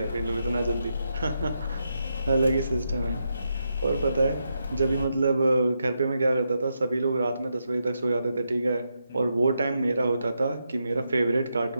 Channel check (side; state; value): both; inverted; correlation -0.83